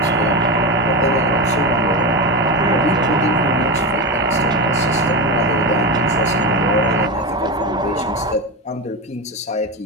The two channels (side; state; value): both; normal; correlation 0.17